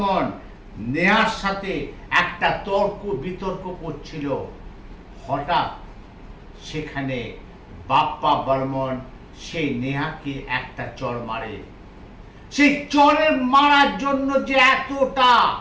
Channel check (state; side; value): identical; both; correlation 1.00